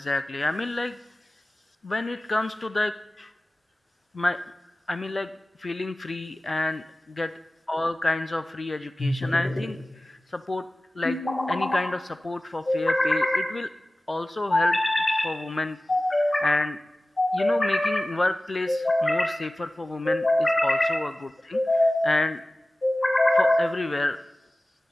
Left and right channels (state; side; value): normal; both; correlation 0.97